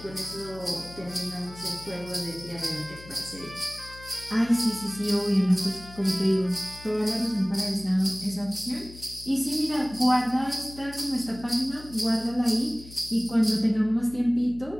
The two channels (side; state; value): left; noise; hum, 17 dB below the sound